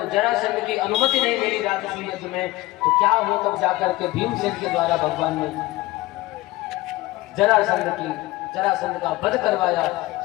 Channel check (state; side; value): quieter; right; 18.9 dB